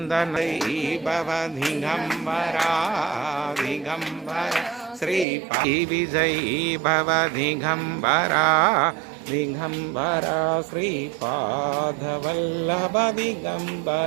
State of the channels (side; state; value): left; drops out; at 5.2 s